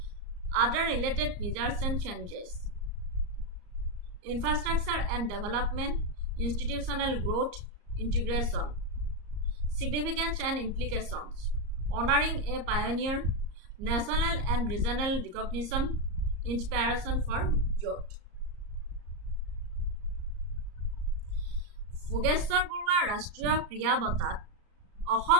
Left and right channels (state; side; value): late; left; 34 ms